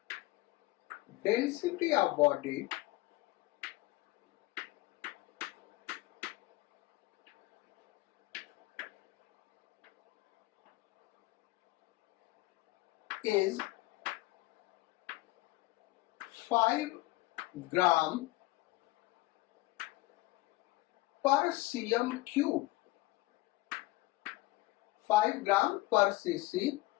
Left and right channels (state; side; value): quieter; right; 19.3 dB